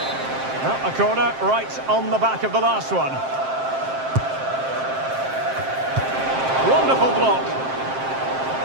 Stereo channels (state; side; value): late; left; 7.6 ms